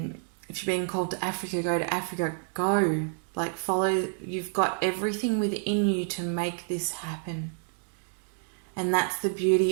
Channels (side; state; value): left; silent; 56 dB below the other